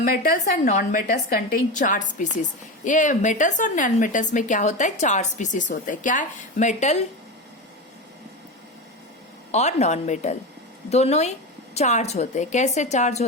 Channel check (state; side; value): normal; both; correlation 0.21